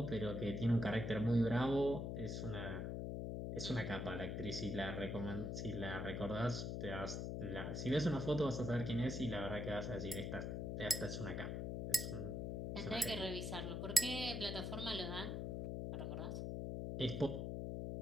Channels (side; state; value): left; noise; hum, 2 dB below the sound